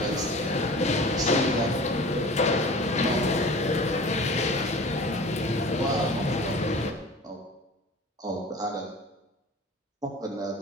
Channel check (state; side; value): normal; both; correlation 0.40